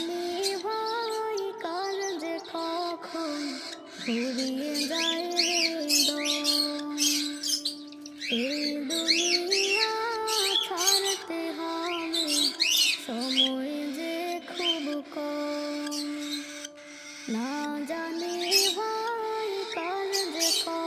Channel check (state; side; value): identical; both; correlation 1.00